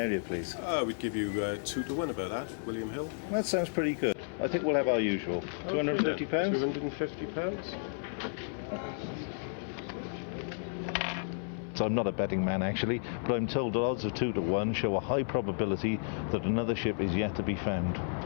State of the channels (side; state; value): right; silent; 56 dB below the other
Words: please? We'd give you 2 to 1 about that, William Hill. That sounds pretty good. I think we'll have our usual. £250? £250. So I'm not a betting man, actually, but I'm told that odds of 2 to 1 show a high probability that another ship is yet to be found.